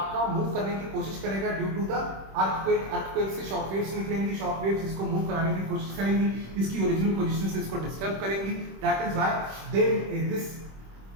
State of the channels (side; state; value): left; late; 26 ms